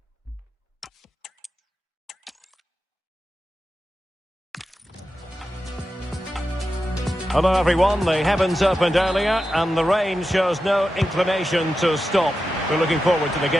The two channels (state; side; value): normal; both; correlation 0.91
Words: Hello everyone, the heavens opened earlier and the rain shows no inclination to stop. We're looking forward to the